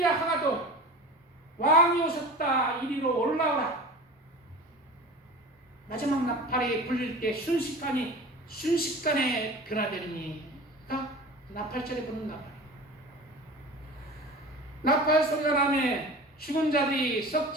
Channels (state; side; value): normal; both; correlation 0.36